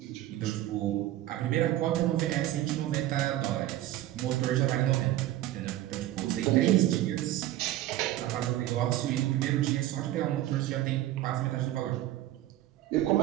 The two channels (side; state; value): left; quieter; 14.3 dB